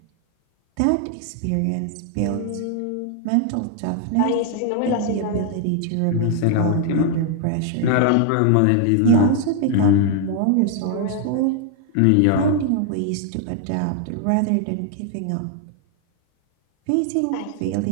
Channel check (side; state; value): both; different; correlation 0.00